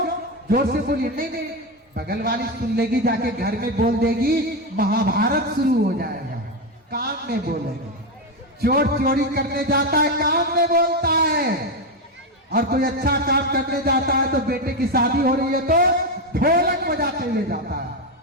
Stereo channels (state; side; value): normal; both; correlation 0.10